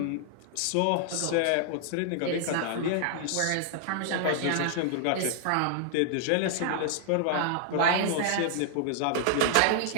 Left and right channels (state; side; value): different; both; correlation -0.01